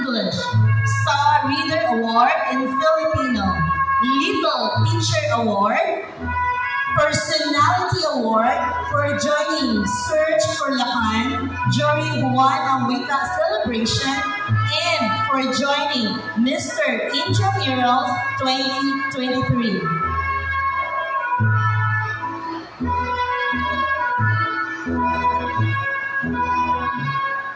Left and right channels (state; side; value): identical; both; correlation 1.00